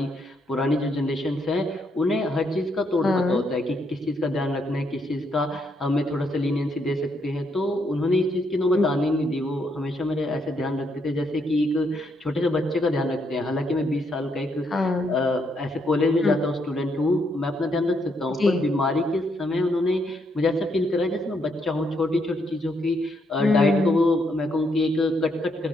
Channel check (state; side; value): normal; both; correlation 0.76